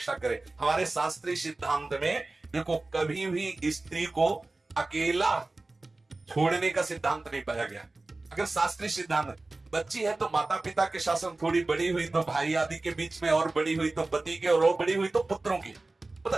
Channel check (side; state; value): left; quieter; 3.1 dB